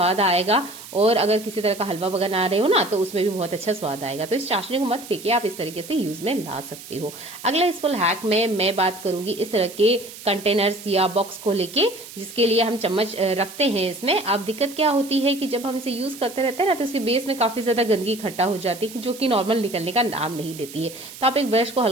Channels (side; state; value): right; noise; hiss, 15 dB below the sound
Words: आएगा, और अगर किसी तरह का हलवा बना रहे हो ना तो उसमें भी बहुत अच्छा स्वाद आएगा। तो इस चाशनी को मत फेंकिए, आप इस तरीके से यूज में ला सकते हो। अगला इस फुल हैक में मैं बात करूंगी इस तरह के कंटेनर्स या बॉक्स को लेके, जिसके लिए हम चम्मच रखते हैं इसमें। अब दिक्कत क्या होती है कि जब हम इसे यूज करते रहते हैं ना तो इसके बेस में काफी ज्यादा गंदगी इकट्ठा हो जाती है, जो कि नॉर्मल निकलने का नाम नहीं लेती है। तो आप एक ब्रश को